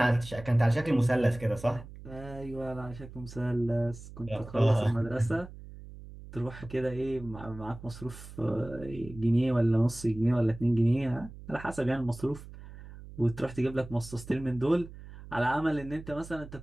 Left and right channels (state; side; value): noise; right; hum, 15 dB below the sound